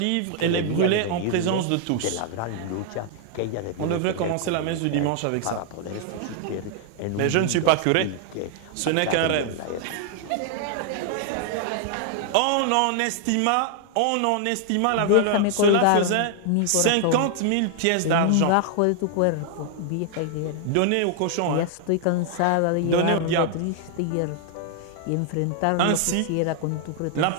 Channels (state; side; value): different; both; correlation 0.00